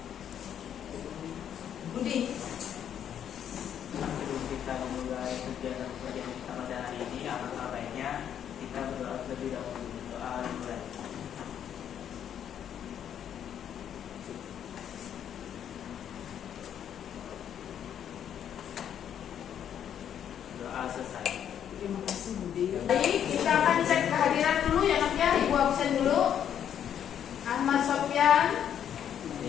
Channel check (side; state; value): right; quieter; 9.4 dB